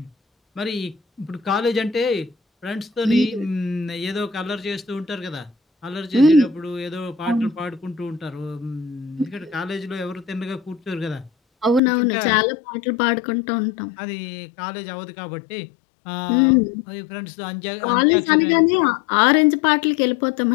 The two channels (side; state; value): right; drops out; at 11.8 s